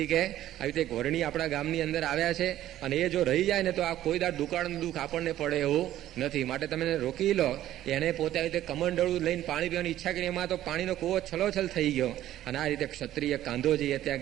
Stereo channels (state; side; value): quieter; left; 13.1 dB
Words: કે આવી રીતે એક વર્ણી આપણા ગામની અંદર આવ્યા છે અને એ જો રહી જાય ને તો આ કોઈ દાડ દુકાળનું દુઃખ આપણને પડે એવું નથી, માટે તમે એને રોકી લો. એણે પોતે આવી રીતે કમંડળું લઈને પાણી પીવાની ઈચ્છા કરી, એમાં તો પાણીનો કૂવો છલોછલ થઈ ગયો. અને આ રીતે ક્ષત્રિય કાંધોજી એ